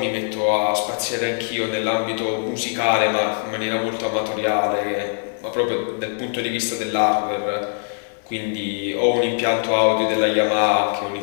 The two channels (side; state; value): right; silent; digital silence